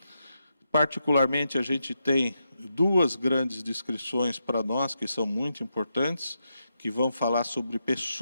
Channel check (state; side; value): inverted; both; correlation -0.84